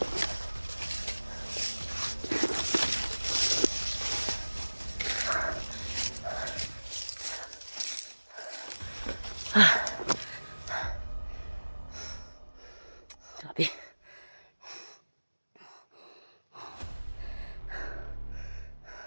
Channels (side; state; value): both; inverted; correlation -1.00